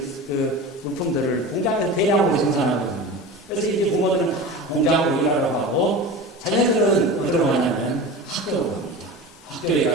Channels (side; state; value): both; normal; correlation 0.31